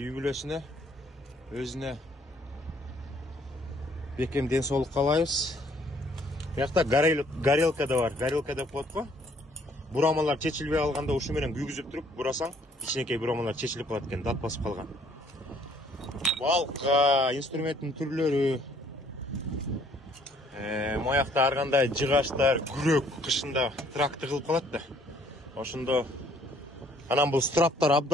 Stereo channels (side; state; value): both; normal; correlation 0.62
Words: бүлөсүнө, өзүнө бекем ден соолук каалайбыз. Буякта горелка да бар. Горелка деп коет го. Бурамалар чечилбей калганда ушу менен күйгүзүп туруп, бурасаң, ичинекей бурамалар чечилип калат экен, дат басып калган. Балка, инструменттин түрлөрү. Моякта ар кандай жыгаштар, күрөк кышында тракты кылып калат да. Ошондо анан бул страптар